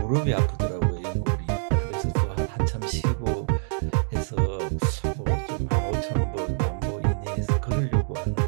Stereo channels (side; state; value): left; silent; digital silence